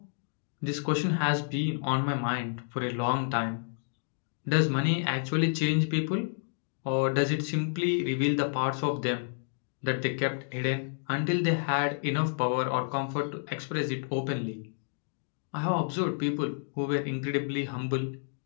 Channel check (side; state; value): right; silent; digital silence